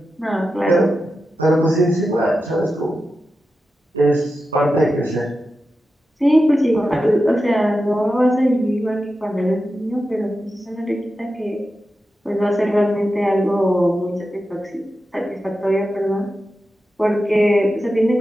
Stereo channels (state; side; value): normal; both; correlation 0.91